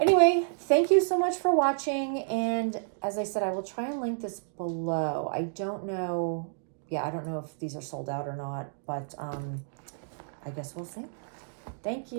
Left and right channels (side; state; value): left; silent; digital silence